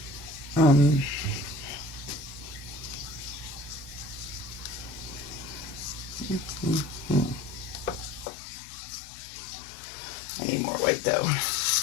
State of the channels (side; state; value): right; drops out; at 8.2 s